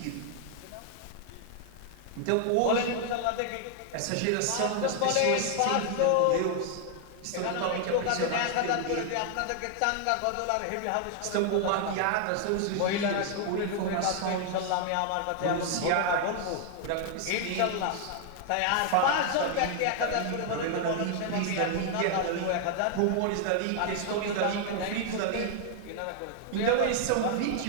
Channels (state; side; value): different; both; correlation 0.00